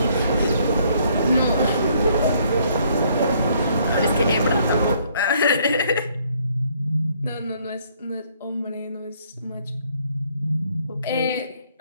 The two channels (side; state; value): both; inverted; correlation -0.65